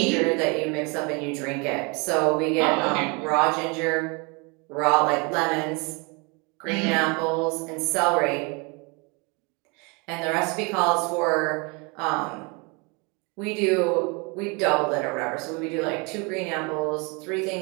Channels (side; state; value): left; quieter; 30.3 dB